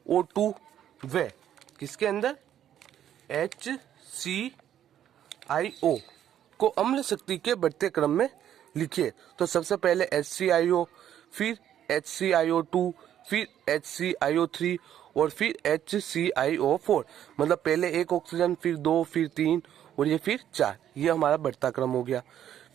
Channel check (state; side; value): quieter; left; 10.6 dB